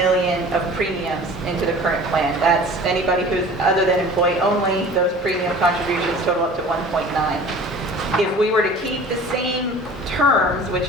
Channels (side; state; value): both; normal; correlation 0.43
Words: of premiums into the current plan. That's anybody who's other than employee only, those premium contributions total up to 1.9. If we were to keep the same terms,